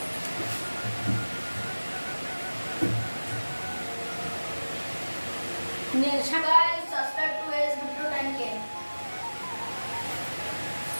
Guys subscribe to S Bittu 10K।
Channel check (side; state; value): both; inverted; correlation -1.00